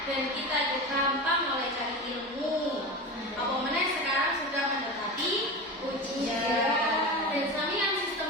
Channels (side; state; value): both; normal; correlation 0.26